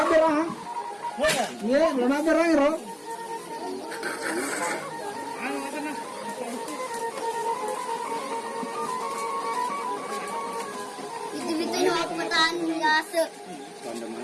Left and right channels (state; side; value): identical; both; correlation 1.00